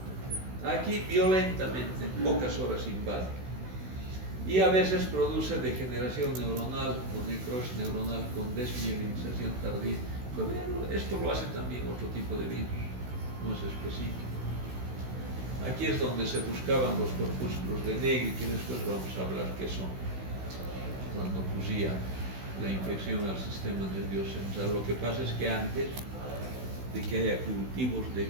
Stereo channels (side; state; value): left; late; 16 ms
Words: Aquí violentamente, en pocas horas invade. Y a veces produce degeneración neuronal o necrosis neuronal con desmielinización tardía. Pero esto lo hace también otro tipo de virus, no es específico. Aquí es donde se buscaban los corpúsculos de Negri, que después vamos a hablar qué son, cuando ocurría la infección al sistema nervioso central. Lo que pasa es que antes de que haya cultivos de